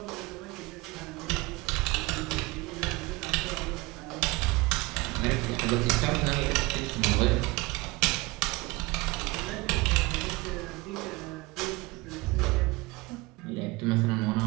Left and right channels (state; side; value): quieter; left; 23.1 dB